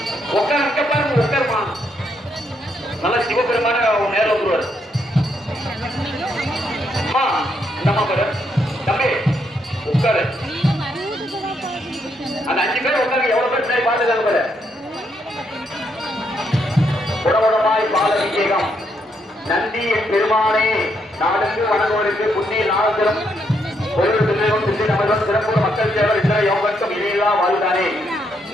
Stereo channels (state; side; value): normal; both; correlation 0.76